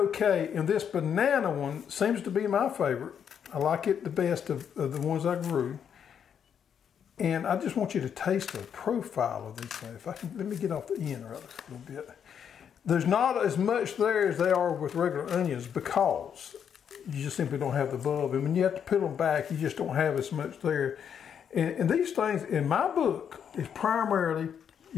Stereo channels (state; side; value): quieter; right; 8.0 dB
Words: And this banana one seems to be my favorite. I like it the best of the ones I grew. And I just want you to taste the profile of these things. If I can, let me get off the end rather a little bit. There's not as much there as they are with regular onions because you just simply don't have the bulb. And when you have to peel them back, you just don't have as much there. And these things, in my book, is primarily